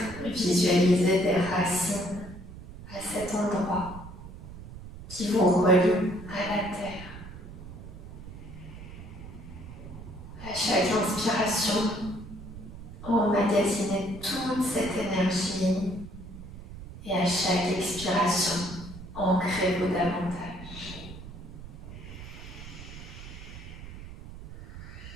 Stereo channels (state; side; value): noise; right; rumble, 13 dB below the sound